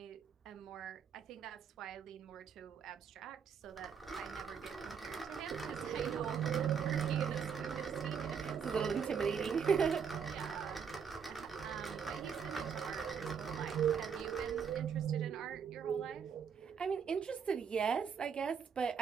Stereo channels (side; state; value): left; quieter; 6.8 dB